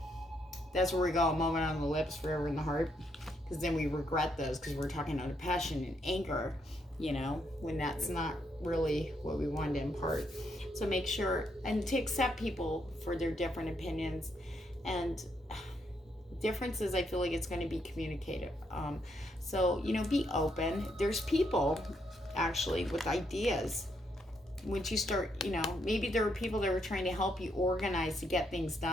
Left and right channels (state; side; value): normal; both; correlation 0.76